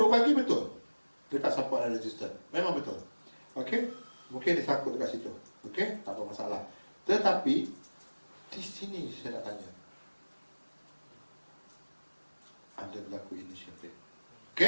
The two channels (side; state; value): both; inverted; correlation -1.00